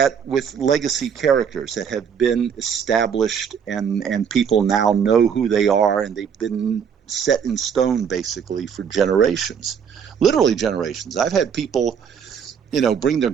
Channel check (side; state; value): left; quieter; 7.3 dB